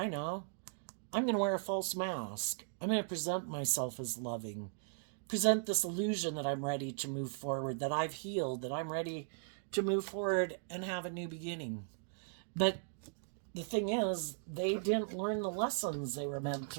know. I'm going to wear a false mask. I'm going to present myself as loving. Present this illusion that I'm ready to move forward, that I've healed, that I'm ready to move forward and have a new beginning. But the thing is, they didn't learn the lessons they were meant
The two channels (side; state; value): left; silent; digital silence